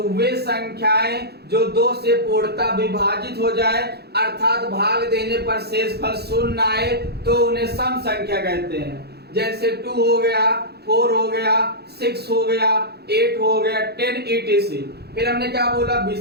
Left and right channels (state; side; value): late; left; 0.47 ms